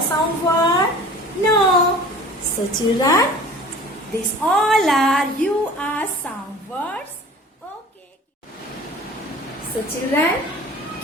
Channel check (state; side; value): normal; both; correlation 0.44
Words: sound word? No. So children, these all are your sound words. Okay. So children,